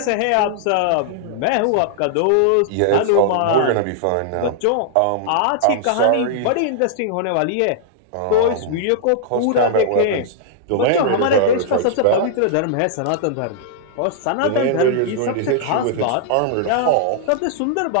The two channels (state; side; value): different; both; correlation -0.01